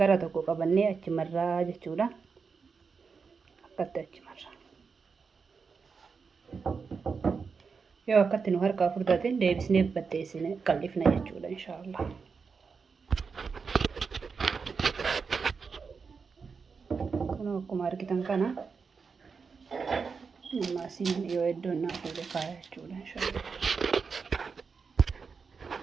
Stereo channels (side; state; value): left; quieter; 5.3 dB